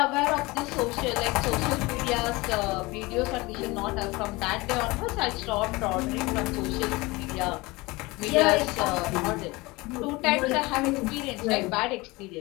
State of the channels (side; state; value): right; quieter; 22.9 dB